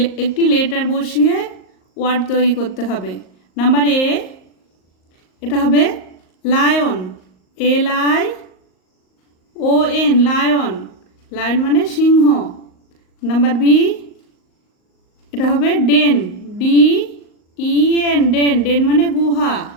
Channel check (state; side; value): late; right; 38 ms